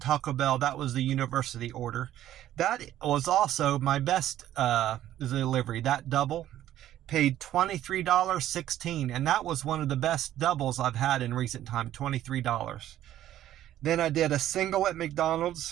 Taco Bell. That was the university order. That was also my best delivery. That double paid $23.16, and that was one of the best doubles I've had in recent time, $23. Then I did a single at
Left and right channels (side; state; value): left; quieter; 12.6 dB